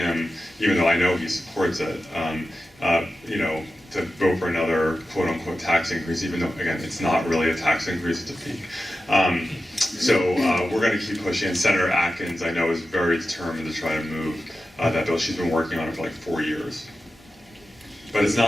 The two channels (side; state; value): both; normal; correlation 0.93